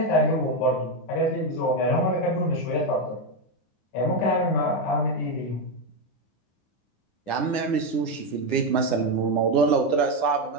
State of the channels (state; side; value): late; right; 9.8 ms